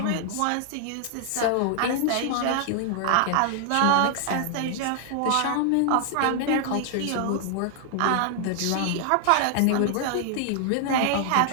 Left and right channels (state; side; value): different; both; correlation 0.00